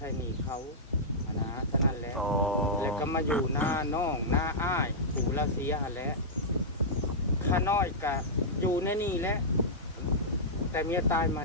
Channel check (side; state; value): both; normal; correlation -0.11